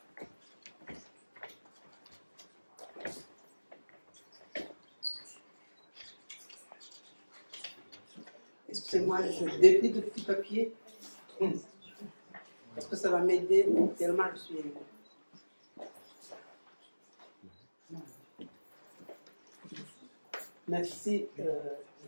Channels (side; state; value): both; inverted; correlation -1.00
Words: Excusez-moi, je déplie de petits papiers. Parce que ça va m'aider tellement je suis ému. Merci,